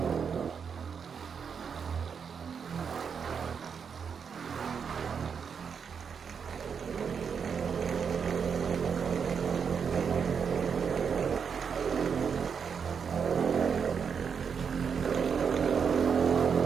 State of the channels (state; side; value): quieter; left; 6.6 dB